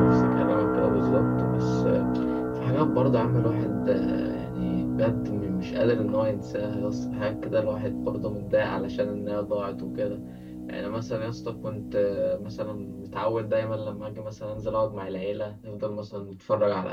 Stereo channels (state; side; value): identical; both; correlation 1.00